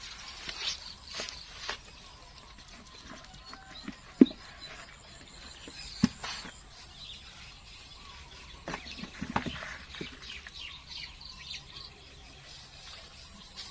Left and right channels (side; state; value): both; identical; correlation 1.00